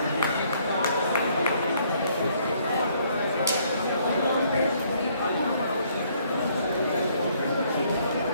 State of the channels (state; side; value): inverted; both; correlation -0.65